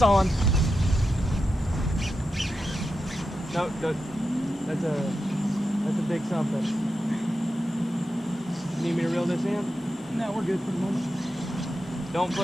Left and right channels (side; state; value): both; normal; correlation 0.89